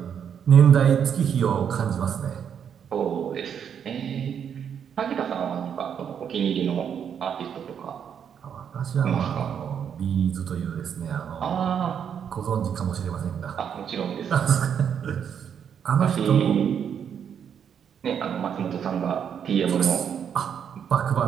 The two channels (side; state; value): left; quieter; 8.0 dB